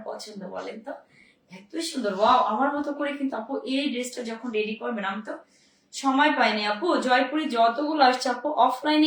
পছন্দ বলেন তো? এত সুন্দর, ওয়াও। আমার মতো করে কিন্তু আপু এই ড্রেসটা যখন রেডি করবেন, আমি তো সময় পাইনি আপু, জয়পুরে যতগুলো আসছে আপু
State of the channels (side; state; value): both; identical; correlation 1.00